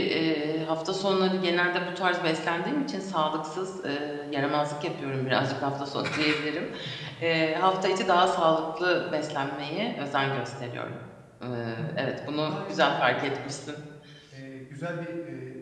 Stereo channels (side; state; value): both; identical; correlation 1.00